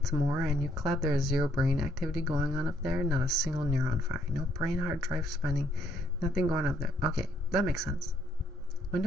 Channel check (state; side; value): normal; both; correlation 0.69